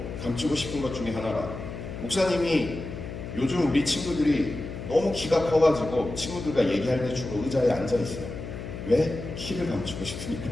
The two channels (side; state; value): left; noise; hum, 8 dB below the sound